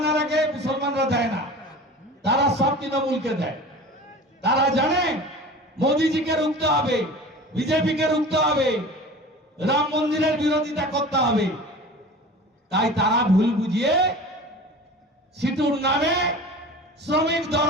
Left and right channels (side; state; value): both; normal; correlation 0.38